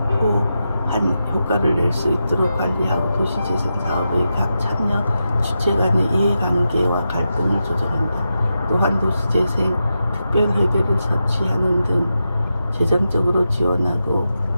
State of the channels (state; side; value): inverted; both; correlation -0.89